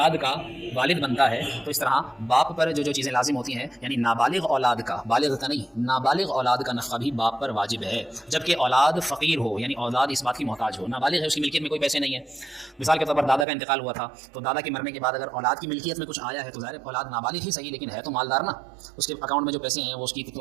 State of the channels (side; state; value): left; drops out; at 13.5 s